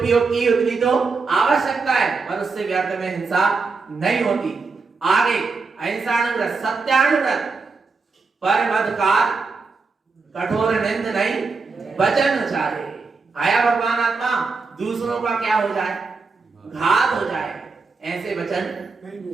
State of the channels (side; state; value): left; quieter; 4.4 dB